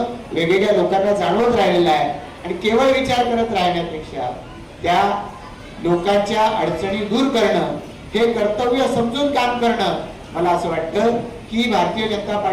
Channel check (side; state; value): both; identical; correlation 1.00